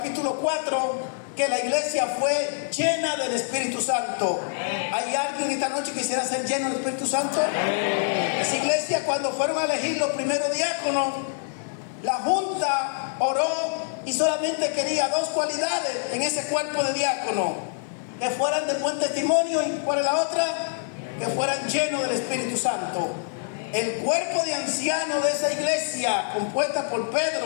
4, que la iglesia fue llena del Espíritu Santo. ¿Hay alguien esta noche que quisiera ser lleno del Espíritu Santo? Esa iglesia, cuando fueron a elegir los primeros diáconos, la junta oró y solamente quería 2 cualidades en ese cuerpo de diácono: que fueran de buen testimonio, y ¿cuál es la otra? Que fueran llenos del Espíritu Santo. El cuerpo de ancianos de esa iglesia, compuesta por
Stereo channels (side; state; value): right; silent; digital silence